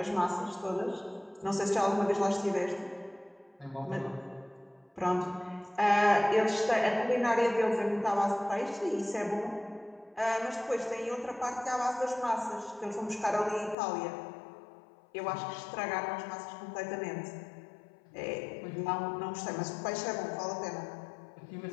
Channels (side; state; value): right; drops out; at 13.8 s